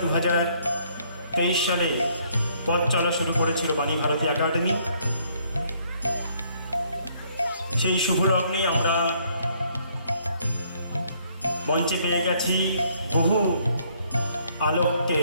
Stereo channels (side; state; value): both; inverted; correlation -0.66